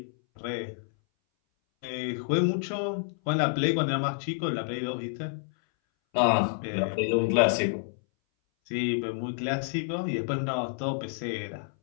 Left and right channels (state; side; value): silent; right; 59 dB below the other